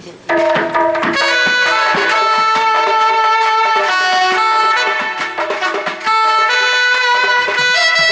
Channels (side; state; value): both; identical; correlation 1.00